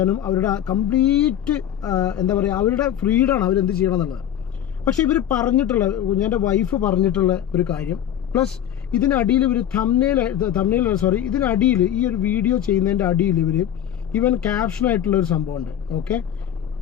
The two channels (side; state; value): right; quieter; 10.5 dB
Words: അവരുടെ കംപ്ലീറ്റ് എന്താ പറയുക, അവരുടെ ഫ്രീഡമാണ് അവരെന്ത് ചെയ്യണം എന്നുള്ളത്. പക്ഷേ ഇവർ പറഞ്ഞിട്ടുള്ള, എൻ്റെ വൈഫ് പറഞ്ഞിട്ടുള്ള ഒരു കാര്യം, പ്ലസ് ഇതിനടിയിൽ ഇവർ ഇതിനടിയിൽ ഈ ഒരു വീഡിയോ ചെയ്യുന്നതിൻ്റെ അടിയിൽ ഇവൻ ക്യാപ്ഷനായിട്ടുള്ള ഒരു സംഭവമുണ്ട്. ഓക്കെ,